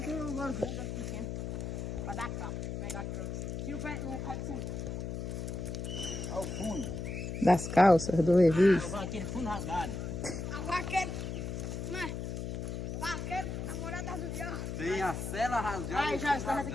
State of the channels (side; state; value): left; noise; hum, 4 dB below the sound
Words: que eu agora vou dar pequeno. Pra dar capa. Vou pegar aqui pra você. Tira o pé do fundo. Olha o fundo. Das calças, do Levi. Aquele fundo rasgado. A vaqueira. Né? Vaqueira, namorada do diabo. Tem a cela rasgada. Ai, já, está aqui